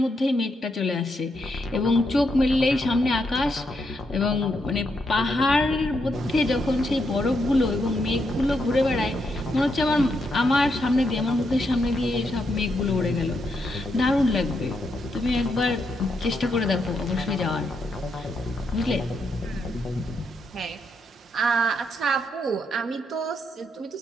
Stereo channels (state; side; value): normal; both; correlation 0.80